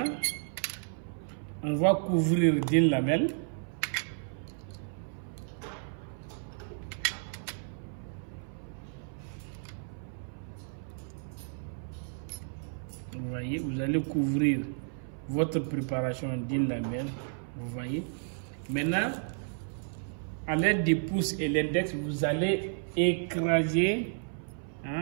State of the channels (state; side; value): silent; left; 56 dB below the other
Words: on va couvrir d'une lamelle. Vous voyez, vous allez couvrir votre préparation d'une lamelle. Vous voyez. Maintenant, à l'aide du pouce et l'index, vous allez écraser